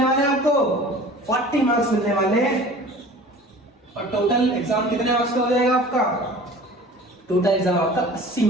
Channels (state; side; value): normal; both; correlation 0.43